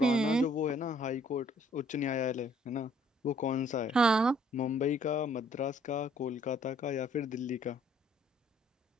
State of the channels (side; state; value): both; normal; correlation 0.62